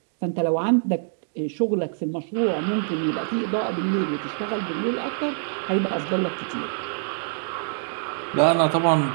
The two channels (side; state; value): left; silent; digital silence